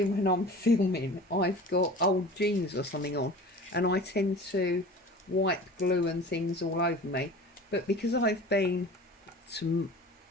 when I'm filming, I've got old jeans or something on, and I tend to wipe glue and things all over me. But because I've been to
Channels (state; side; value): normal; both; correlation 0.39